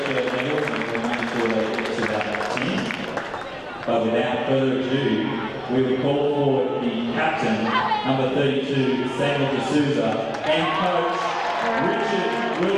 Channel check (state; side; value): identical; both; correlation 1.00